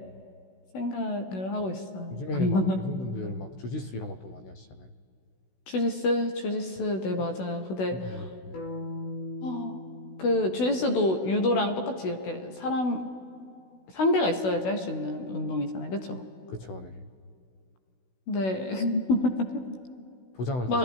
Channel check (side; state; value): right; late; 16 ms